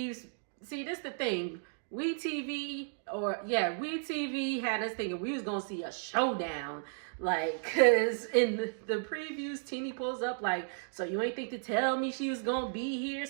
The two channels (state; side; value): silent; left; digital silence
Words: See, this is the thing. WeTV had us thinking we was going to see a showdown. Like, because in the previews, Teeny pulls up like, so you ain't think to tell me she was going to be here?